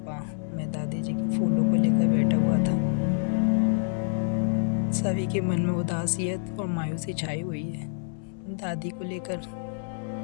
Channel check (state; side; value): silent; right; 60 dB below the other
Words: मैं दादी जी के फूलों को लेकर बैठा हुआ था। सभी के मन में उदासियत और मायूसी छाई हुई है दादी को लेकर,